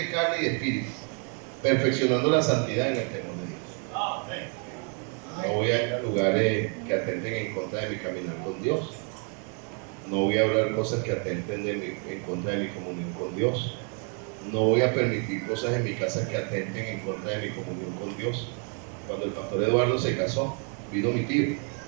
carne y de espíritu, perfeccionando la santidad en el temor de Dios. No voy a ir a lugares que atenten en contra de mi caminar con Dios. No voy a hablar cosas que atenten en contra de mi comunión con Dios. No voy a permitir cosas en mi casa que atenten en contra de mi comunión con Dios. Cuando el pastor Eduardo se casó, vino mi tío.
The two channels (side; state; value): left; quieter; 39.3 dB